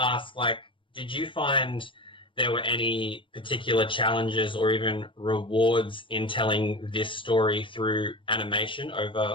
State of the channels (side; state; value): right; late; 0.25 ms